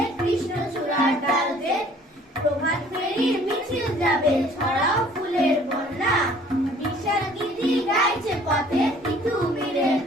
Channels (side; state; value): both; normal; correlation 0.55